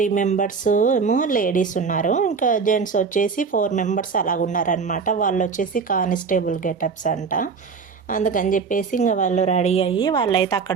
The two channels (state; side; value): quieter; left; 5.4 dB